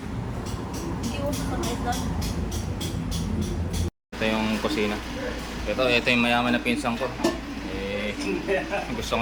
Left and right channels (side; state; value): both; identical; correlation 1.00